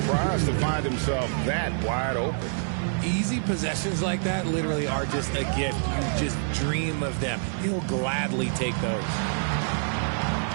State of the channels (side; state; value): left; silent; digital silence